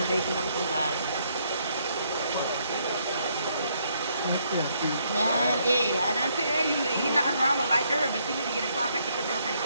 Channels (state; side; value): inverted; both; correlation -0.71